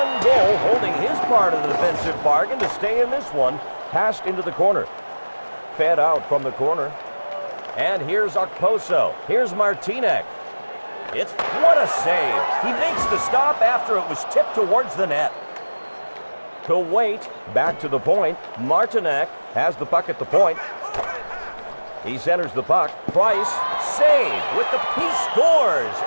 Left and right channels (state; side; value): inverted; both; correlation -1.00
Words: goal, holding his part of the defensive bargain to stay in this one. Passed into the corner. Fed out from the corner. And here's Okposo. Here's Martinek. What a save. He makes the stop after it was tipped towards the net. To Wait, back to the point. Martinek has the puck at the point. He centers the puck. Price, save with he scores.